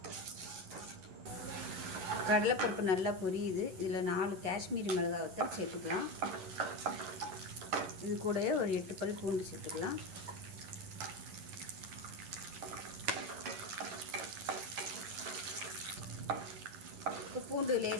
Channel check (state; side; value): late; left; 11 ms